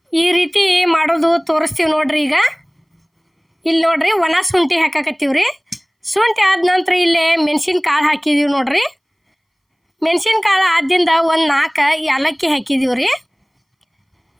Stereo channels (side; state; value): both; identical; correlation 1.00